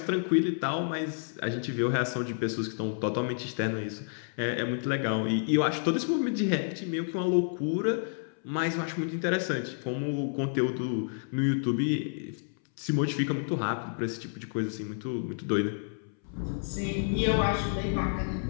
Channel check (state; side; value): silent; right; 58 dB below the other